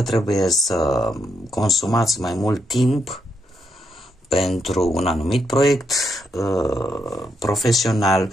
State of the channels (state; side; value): normal; both; correlation 0.80